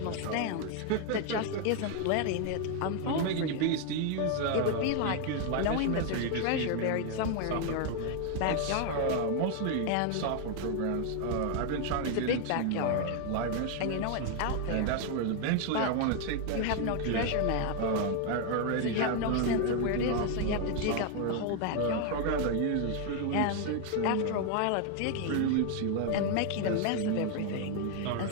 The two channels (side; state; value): both; different; correlation 0.00